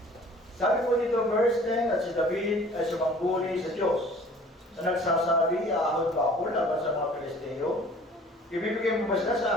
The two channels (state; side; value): normal; both; correlation 0.50